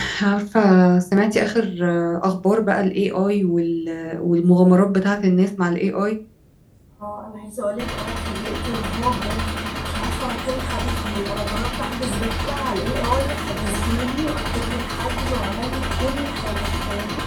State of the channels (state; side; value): identical; both; correlation 1.00